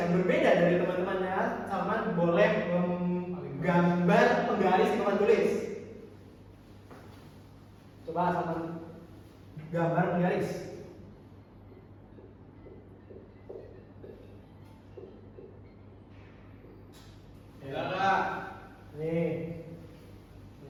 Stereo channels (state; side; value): identical; both; correlation 1.00